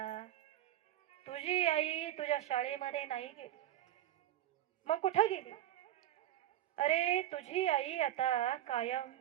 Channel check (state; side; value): quieter; left; 12.8 dB